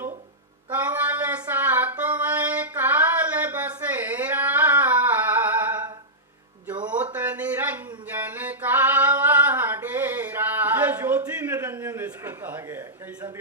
कमल सा तुम्हें काल बसेरा, ज्योत निरंजन का वह डेरा। ये ज्योति निरंजन इसको कहा गया है। कई संत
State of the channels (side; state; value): both; normal; correlation -0.12